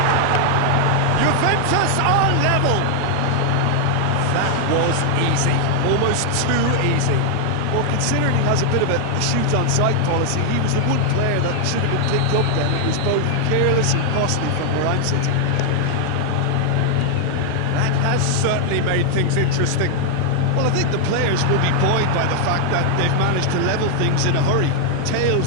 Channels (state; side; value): different; both; correlation 0.00